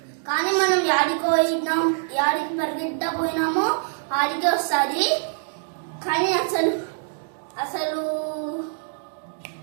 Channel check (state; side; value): silent; left; 62 dB below the other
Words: కానీ మనం యాడికి పరిగెత్తా పోయినామో ఆడికి వస్తుంది. కానీ అసలు అసలు